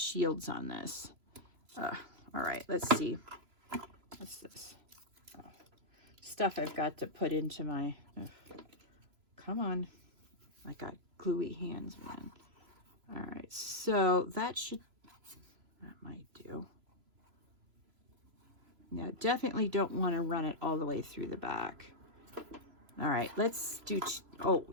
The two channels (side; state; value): left; late; 3.0 ms